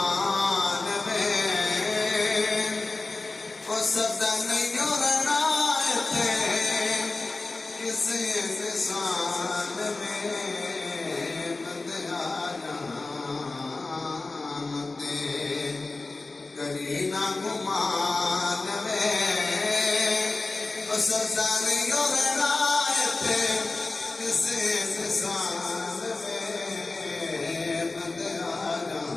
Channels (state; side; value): quieter; right; 3.4 dB